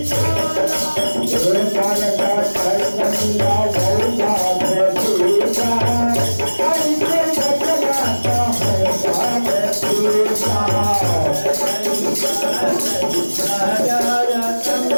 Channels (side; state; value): both; inverted; correlation -1.00